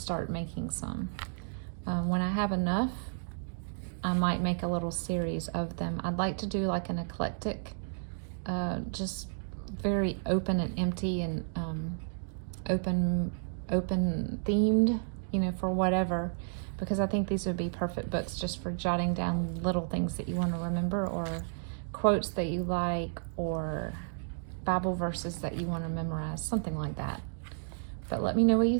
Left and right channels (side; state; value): left; silent; digital silence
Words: making some. When I have enough, I might make a little series of them. I'd like to do like an eclectic, just very open and empty and open themed, for whatever. Because I think these would be perfect books just for jotting down little things that you want to remember, or quotes that you like, or Bible verses that you want to memorize, something like that. But let me know what you